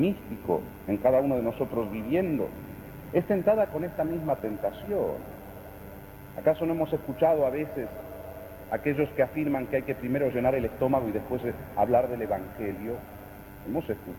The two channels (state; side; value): identical; both; correlation 1.00